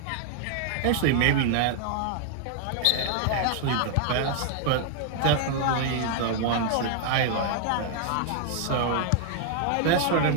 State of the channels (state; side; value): different; both; correlation 0.00